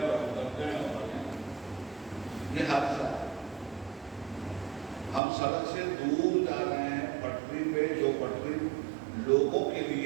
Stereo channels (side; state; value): left; drops out; at 5.2 s